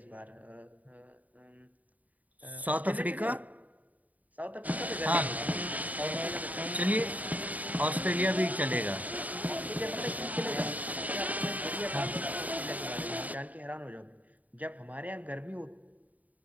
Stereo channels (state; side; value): late; left; 0.074 ms